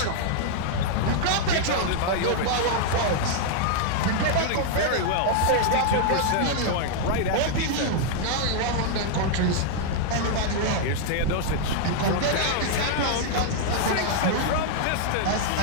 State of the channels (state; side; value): different; both; correlation -0.01